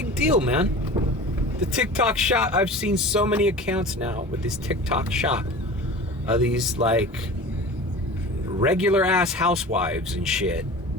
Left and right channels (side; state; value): both; normal; correlation 0.37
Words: deal, man. The TikTok shop. I've seen so many accounts now with this TikTok shop. These like regular ass housewives and shit